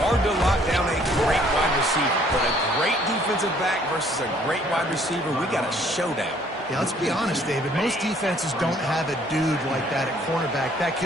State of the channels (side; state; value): both; normal; correlation 0.61